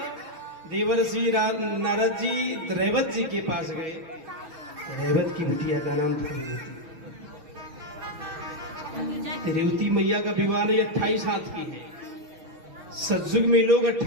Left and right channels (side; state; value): left; late; 6.3 ms